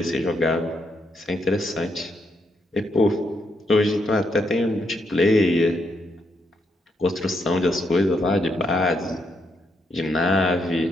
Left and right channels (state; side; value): normal; both; correlation 0.78